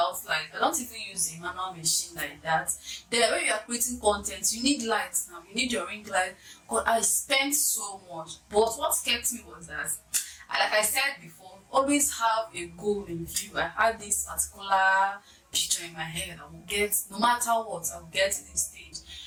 light. I don't even use a manual machine like that. Then when you are creating content, you need lights now. You need your ring light. God, I spent so much. But what kept me was that, like I said before, always have a goal in view. I had this particular picture in my head. I will get, no matter what, I will get to this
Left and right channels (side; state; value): both; identical; correlation 1.00